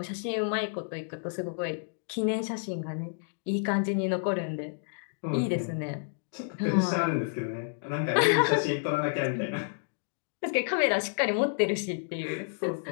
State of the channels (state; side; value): silent; right; digital silence